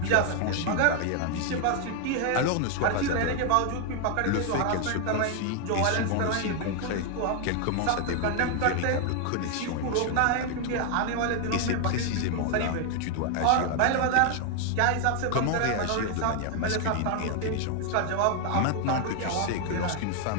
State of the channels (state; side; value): different; both; correlation 0.00